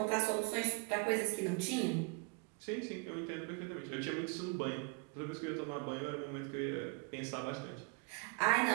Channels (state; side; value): quieter; left; 33.9 dB